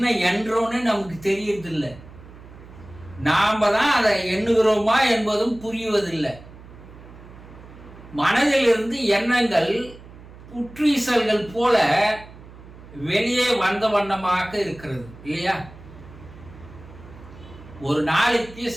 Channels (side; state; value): right; noise; hum, 19 dB below the sound